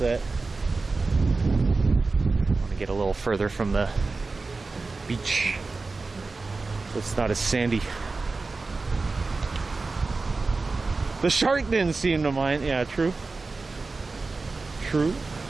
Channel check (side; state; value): left; quieter; 3.8 dB